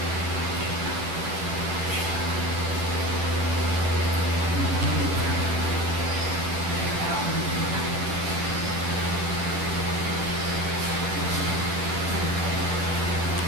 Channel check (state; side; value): late; left; 9.9 ms